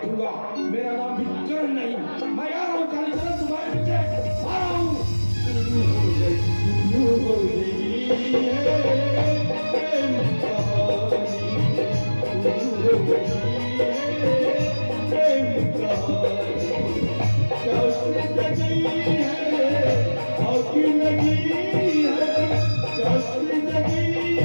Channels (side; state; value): both; inverted; correlation -1.00